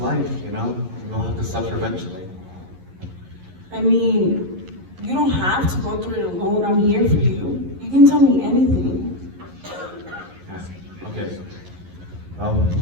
you know? You'll have to suffer eventually. I mean, you don't have to go through it alone. I'm here for you. You can tell me anything. Yeah, okay.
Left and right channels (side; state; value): left; late; 11 ms